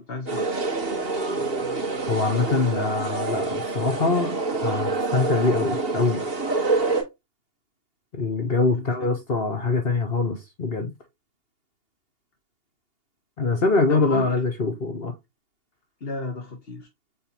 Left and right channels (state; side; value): late; right; 2.8 ms